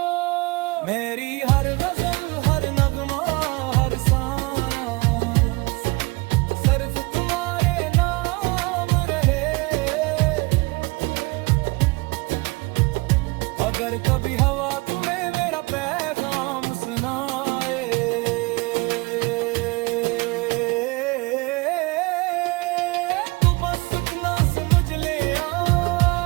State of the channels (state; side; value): quieter; left; 25.5 dB